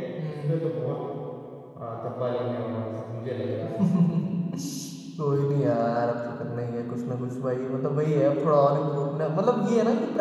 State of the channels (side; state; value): both; identical; correlation 1.00